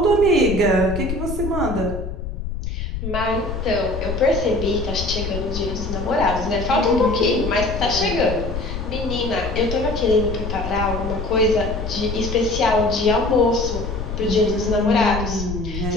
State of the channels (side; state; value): left; noise; rumble, 6 dB below the sound